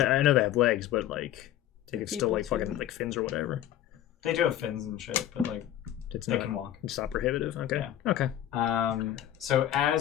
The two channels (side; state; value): right; quieter; 12.0 dB